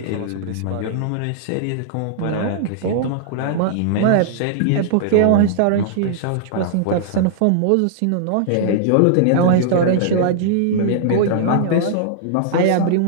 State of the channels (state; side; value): different; both; correlation -0.01